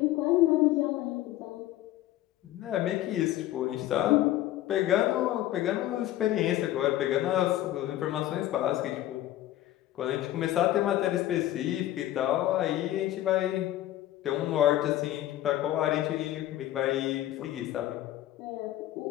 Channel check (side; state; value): right; quieter; 14.1 dB